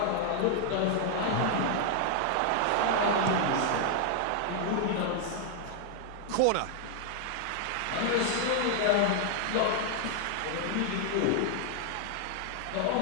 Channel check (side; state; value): both; different; correlation 0.00